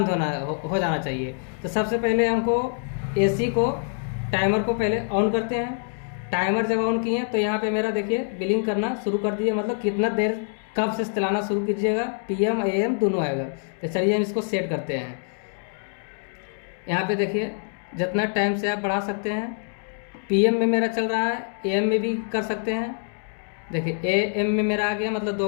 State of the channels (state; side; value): silent; right; digital silence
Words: हो जाना चाहिए। तो सबसे पहले हमको एसी को टाइमर को पहले ऑन करते हैं। टाइमर जब ऑन किए तो यहाँ पे मेरा देखिए बिलिंग करना शुरू कर दिए, मतलब कितना देर कब से चलाना शुरू कीजिएगा, PM AM दोनों आएगा। तो चलिए हम इसको सेट करते हैं। यहाँ पे देखिए जितना टाइम से आप बढ़ा सकते हैं। PM में मेरा चल रहा है, AM में भी कर सकते हैं। देखिए AM में मेरा आ गया, मतलब